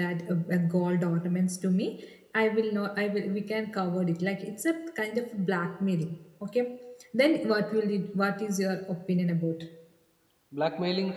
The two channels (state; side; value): identical; both; correlation 1.00